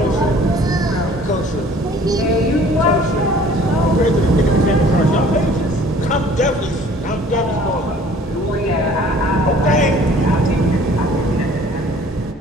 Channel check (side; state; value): both; normal; correlation 0.53